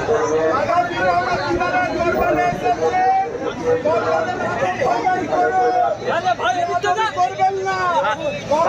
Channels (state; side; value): identical; both; correlation 1.00